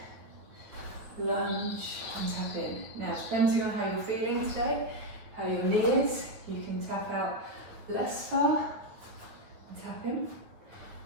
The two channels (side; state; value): left; late; 9.4 ms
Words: Lunge and tap in. Now, depending on how you're feeling today, how your knee is, you can tap out less far and tap in.